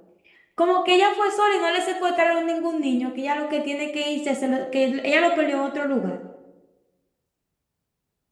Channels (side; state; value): both; identical; correlation 1.00